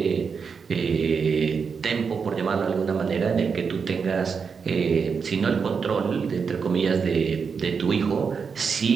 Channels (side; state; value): left; quieter; 5.8 dB